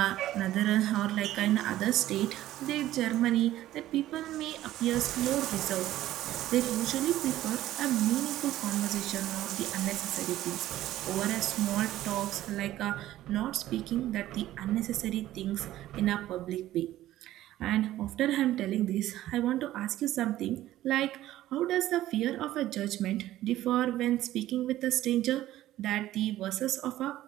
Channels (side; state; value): left; quieter; 14.3 dB